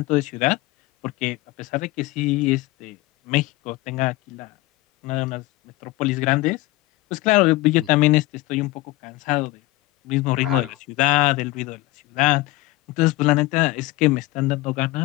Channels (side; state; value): right; quieter; 19.6 dB